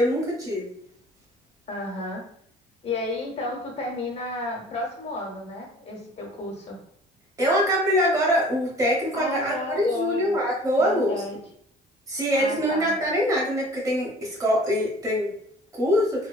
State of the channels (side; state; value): both; normal; correlation 0.48